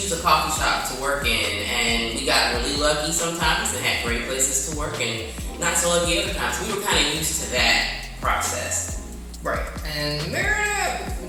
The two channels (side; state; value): both; identical; correlation 1.00